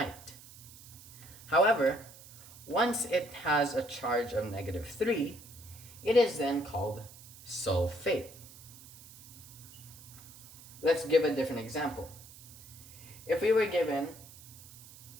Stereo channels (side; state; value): right; noise; hiss, 18 dB below the sound